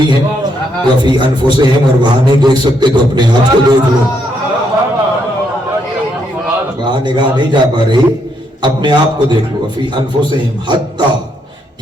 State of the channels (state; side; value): normal; both; correlation 0.75